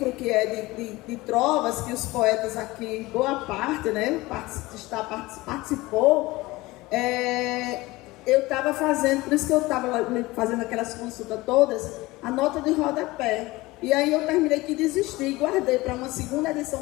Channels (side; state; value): right; quieter; 20.4 dB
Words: que é de trovas, que os poetas aqui, boa parte, né, participou, eu estava fazendo, por isso que eu estava fazendo aquelas consultas todas, a nota de rodapé. E aí eu terminei que desisti, guardei para uma segunda edição,